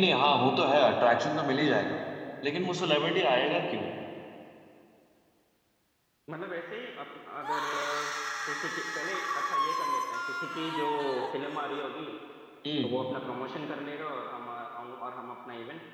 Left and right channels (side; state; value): both; identical; correlation 1.00